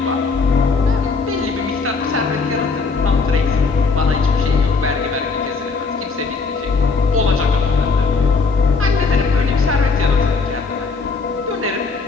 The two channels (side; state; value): right; quieter; 4.5 dB